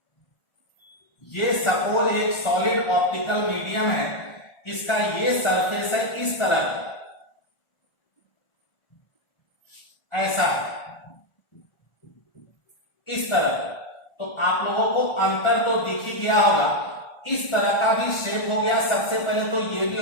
ये सपोज एक सॉलिड ऑप्टिकल मीडियम है, इसका ये सरफेस है इस तरह, ऐसा, इस तरह। तो आप लोगों को अंतर तो दिख ही गया होगा। इस तरह का भी शेप हो गया। सबसे पहले तो ये भी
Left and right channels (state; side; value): late; right; 1.4 ms